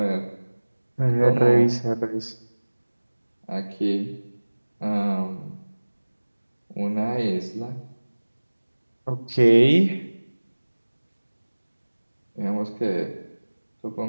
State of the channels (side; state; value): both; inverted; correlation -1.00